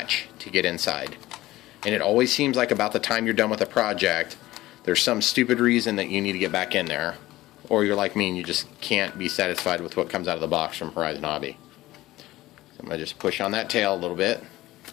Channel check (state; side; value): quieter; right; 17.0 dB